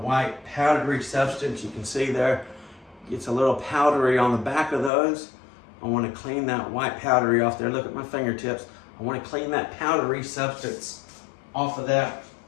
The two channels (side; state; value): right; drops out; at 4.9 s